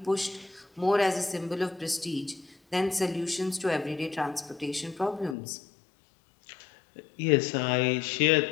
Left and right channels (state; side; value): drops out; right; at 5.4 s